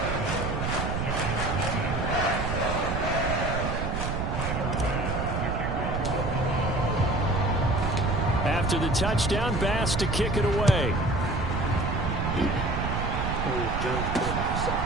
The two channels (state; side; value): noise; right; rumble, 1 dB below the sound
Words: After the touchdown, Bass to kick it away.